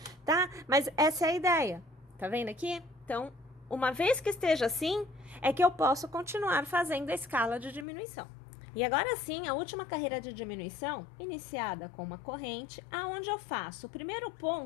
tá? Mas essa é a ideia. Tá vendo aqui? Então, uma vez que esteja assim, é que eu posso continuar fazendo a escala de diminuição. E agora sim, a última carreira de diminuição, iniciada com uma corrente, aonde eu faço o primeiro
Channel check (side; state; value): right; drops out; at 7.9 s